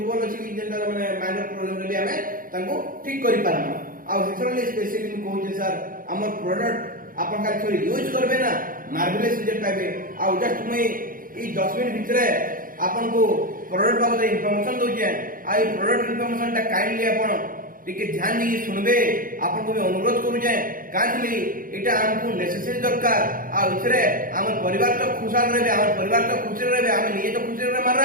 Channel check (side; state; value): left; late; 0.41 ms